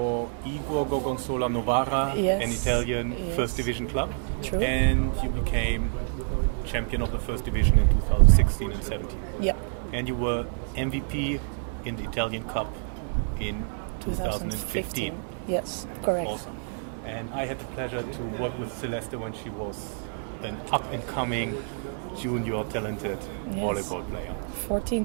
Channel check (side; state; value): left; silent; 60 dB below the other